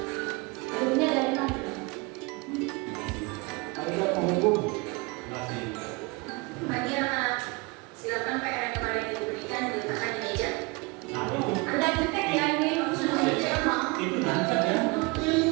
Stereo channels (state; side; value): quieter; left; 26.5 dB